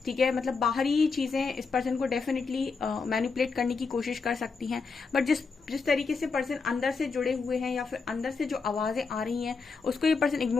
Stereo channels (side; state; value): right; quieter; 4.7 dB